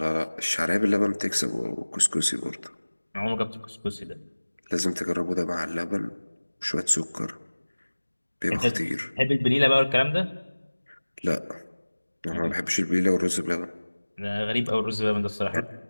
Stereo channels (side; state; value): both; inverted; correlation -1.00